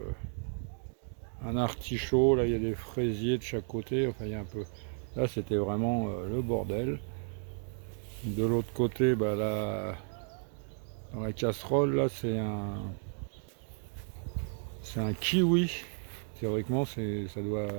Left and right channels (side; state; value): left; silent; 56 dB below the other